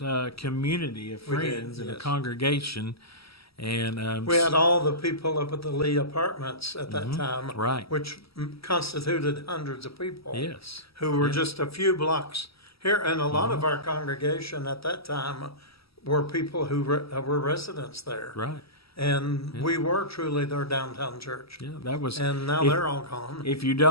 community of friends and a congregation. And we had all the people up at the Lee Apartments at that time, right, which constituted hundreds of people. Yes, who were just a few blocks here, and a lot of our congregation at that time were people who were residents there. Right. And we were truly their downtown church. Yeah, that was. And now they're all gone.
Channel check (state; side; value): late; right; 0.76 ms